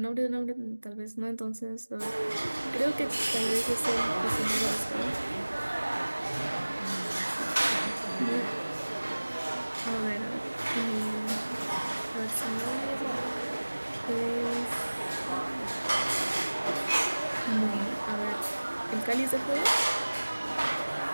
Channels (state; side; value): inverted; both; correlation -1.00